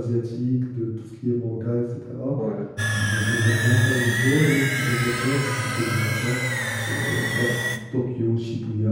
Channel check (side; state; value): both; identical; correlation 1.00